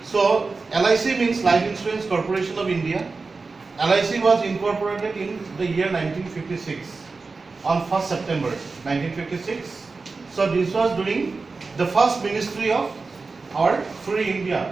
So LIC means Life Insurance Corporation of India. LIC was incorporated in the year 1956 on 1st September 1956. So this was during the first ministry of our free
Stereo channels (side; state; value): left; quieter; 4.1 dB